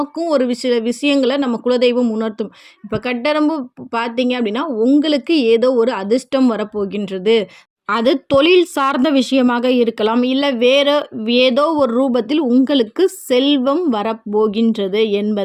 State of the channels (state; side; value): identical; both; correlation 1.00